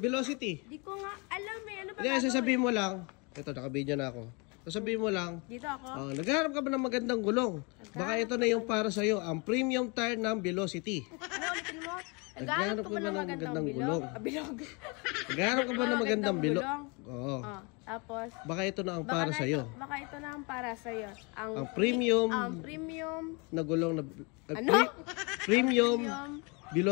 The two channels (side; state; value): right; quieter; 30.7 dB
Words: Di ko nga alam eh. Ano ba Hindi, sasabihin mo lang. Ito, naka-video na ako. Sasabihin mo lang, dito ako? naghahanap ka ba ng magandang gulong? Baka ito na yung para sa'yo, ang premium tire ng Velocity. Ano ulitin mo? Naghahanap ka ba ng magandang gulong? Bilog. Naghahanap ka ba ng magandang bilog? Oo. Tapos, Baka ito na ang para sa'yo. baka ito na ang para sa'yo. Ang premium na gulong na... Ano? Premium